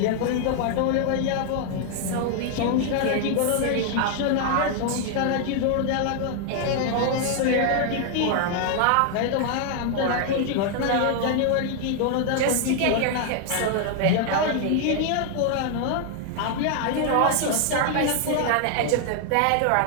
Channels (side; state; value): both; different; correlation 0.00